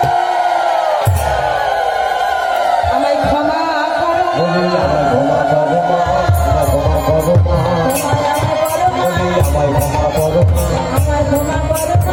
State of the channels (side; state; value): both; identical; correlation 1.00